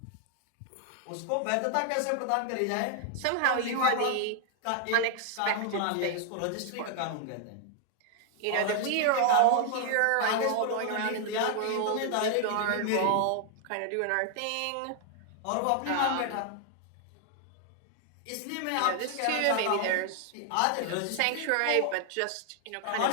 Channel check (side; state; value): both; different; correlation 0.00